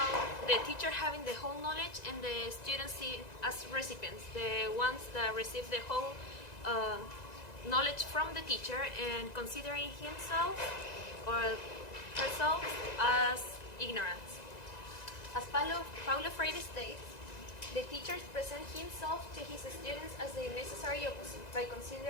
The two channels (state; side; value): late; right; 1.9 ms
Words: the teacher having the whole knowledge and the students as recipients, the ones that receive the whole knowledge from the teacher and considering himself or herself as ignorant. As Paulo Freire states, the teacher presents himself to his students as the necessary opposite by